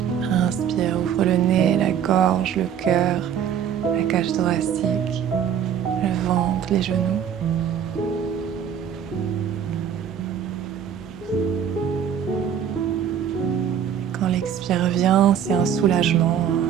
Inspire, ouvre le nez, la gorge, le cœur, la cage thoracique, le ventre, les genoux. Quand l'expire vient, c'est un soulagement.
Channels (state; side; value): quieter; left; 8.7 dB